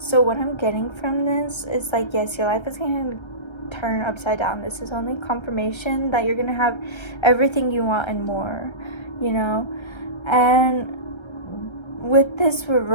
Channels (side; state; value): right; late; 1.3 ms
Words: what I'm getting from this is, like, yes, your life is going to turn upside down. This is only confirmation that you're going to have everything you want and more, you know? And with this